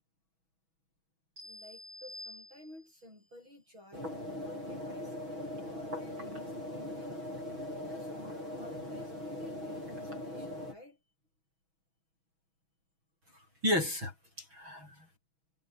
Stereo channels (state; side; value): late; left; 6.2 ms